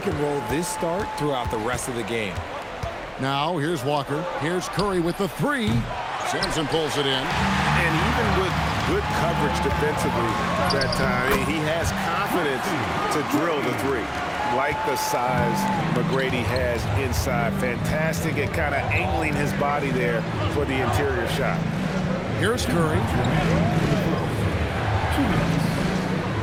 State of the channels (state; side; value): identical; both; correlation 1.00